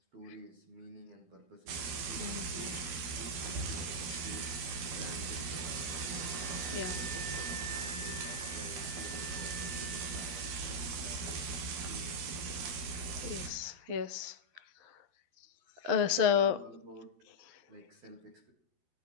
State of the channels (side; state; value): left; late; 12 ms